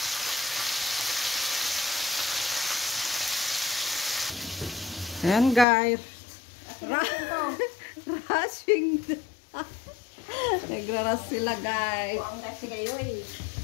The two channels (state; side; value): drops out; right; at 5.7 s